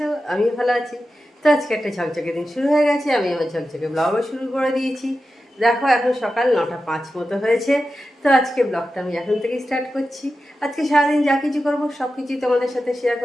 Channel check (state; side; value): normal; both; correlation 0.92